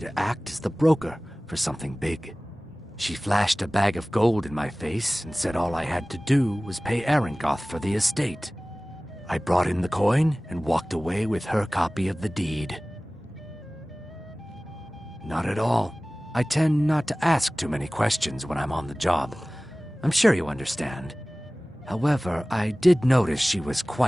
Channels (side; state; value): both; normal; correlation 0.98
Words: act as the broker for something big. She flashed a bag of gold in my face and said all I had to do was pay Arangoth for the estate. I brought in the coin and walked away with her copy of the deed. Not at all. I tend not to ask too many questions when I'm on the job. I'm sure you understand. However, I did notice she was